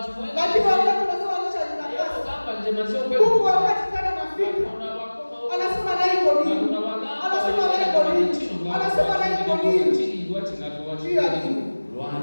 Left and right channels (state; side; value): inverted; both; correlation -1.00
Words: mwe. Lakini wakati nasema kujitakasa. Kugamba nje mazio kwetu. Mungu wakati tena nafika. Anasema na iko nini? Anasema na iko nini? Anasema na iko nini? Jia nini?